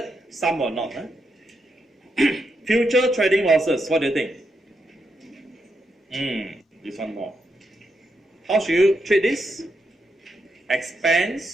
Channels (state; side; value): normal; both; correlation 0.82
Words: some will not. Future trading losses. What do you think? This one more. How should you treat this?